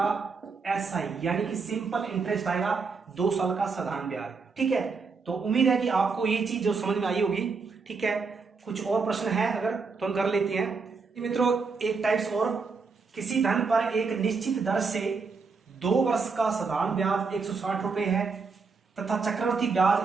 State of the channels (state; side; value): quieter; left; 4.7 dB